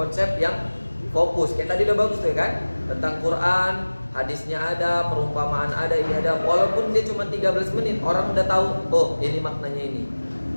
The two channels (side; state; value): both; inverted; correlation -1.00